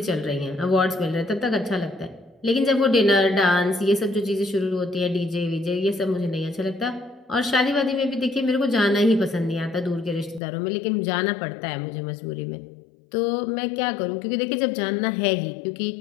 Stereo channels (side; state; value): right; drops out; at 10.4 s